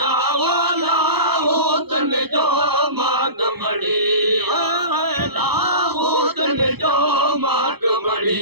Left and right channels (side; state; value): left; late; 0.98 ms